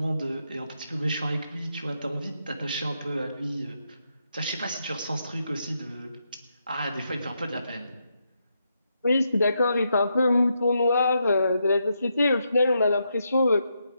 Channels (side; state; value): both; inverted; correlation -0.82